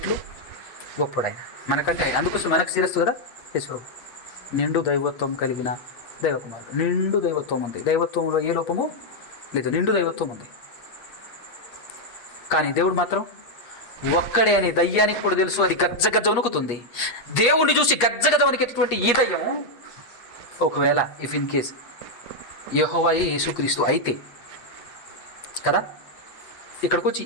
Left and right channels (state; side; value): late; right; 8.4 ms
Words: గొప్పడైన మనకంటే ఆయన. అందుకోసం మనకు శిరస్సు కదా యేసు. నిండు దైవత్వం కలిగిన దైవకుమారుడు. నిండు దైవత్వం ఉంది. దైవత్వంలో ఏ లోపము లేదు, నిండు దైవత్వం ఉంది. కానీ దేవుడు మాత్రం ఒక్కడే అని దయ్యానికి కూడా తెలుసు. అది గజ్జ వణుకుతుంది. దేవుణ్ణి చూసి గజ్జ వణికేటటువంటి ఈ దయ్యం ఒకవేళ ఇన్ కేస్ యెహోవాయే యేసుక్రీస్తు అయితే కదా, ఇక్కడికి వచ్చి